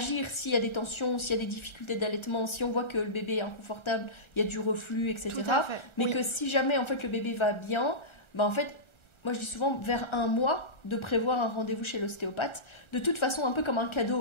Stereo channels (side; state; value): right; late; 1.4 ms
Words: s'il y a des tensions, s'il y a des difficultés d'allaitement, si on voit que le bébé est inconfortable, il y a du reflux, etc. Tout à fait. Mais que si jamais, en fait, le bébé va bien, en fait, moi je dis souvent vers 1 mois de prévoir un rendez-vous chez l'ostéopathe, de toute façon un peu comme un cadeau